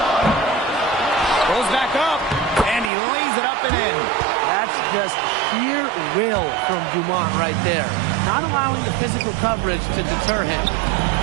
Goes back up, and he lays it up and in. That's just sheer will from Dumont right there. Not allowing the physical coverage to deter him.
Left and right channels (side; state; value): left; drops out; at 2.9 s